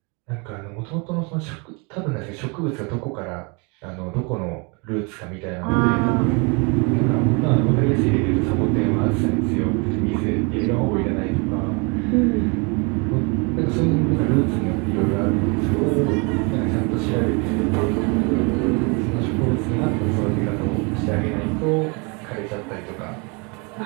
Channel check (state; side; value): quieter; left; 31.5 dB